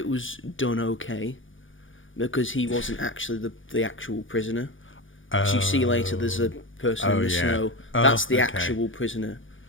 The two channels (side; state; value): right; late; 0.57 ms